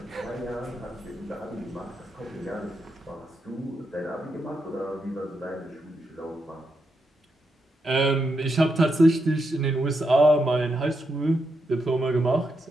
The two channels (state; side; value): normal; both; correlation 0.83